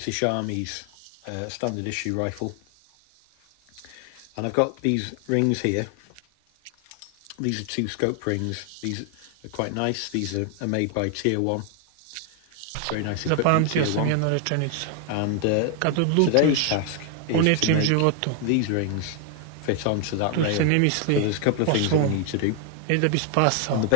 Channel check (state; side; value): different; both; correlation 0.00